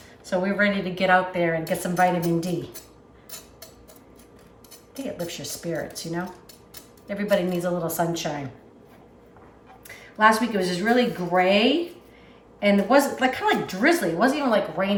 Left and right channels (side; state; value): both; identical; correlation 1.00